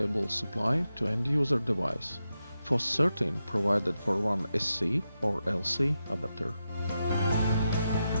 supply to end-user device. FOS-13 provided for one SC or LC adapter.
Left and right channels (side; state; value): both; inverted; correlation -0.88